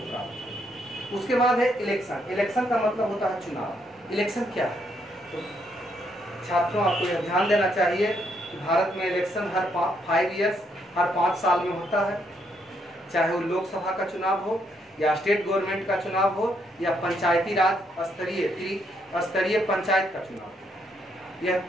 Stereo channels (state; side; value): normal; both; correlation 0.74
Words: प्राप्त है। उसके बाद है इलेक्शन। इलेक्शन का मतलब होता है चुनाव। इलेक्शन क्या है? तो छात्रों, आपको यह ध्यान देना चाहिए कि भारत में इलेक्शन हर 5 ईयर्स, हर 5 साल में होता है, चाहे वो लोकसभा का चुनाव हो या स्टेट गवर्नमेंट का चुनाव हो या पंचायती राज स्तरीय पंचायत का चुनाव हो। यह